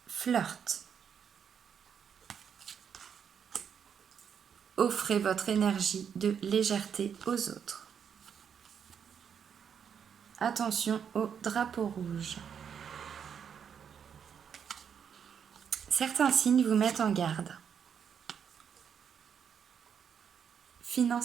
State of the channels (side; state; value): left; quieter; 7.6 dB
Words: Flirt. Offrez votre énergie de légèreté aux autres. Attention au drapeau rouge. Certains signes vous mettent en garde.